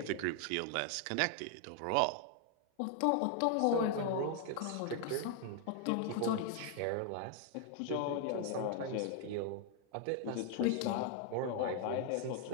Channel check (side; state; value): both; different; correlation 0.00